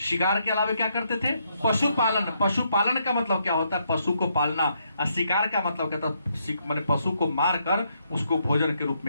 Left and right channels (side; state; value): both; inverted; correlation -0.75